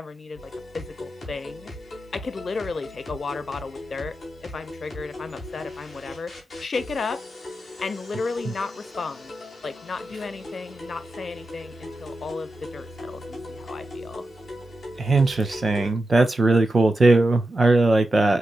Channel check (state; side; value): normal; both; correlation 0.90